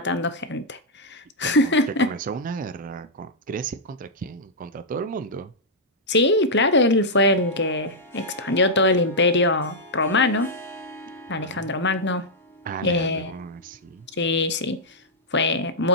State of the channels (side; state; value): both; normal; correlation -0.08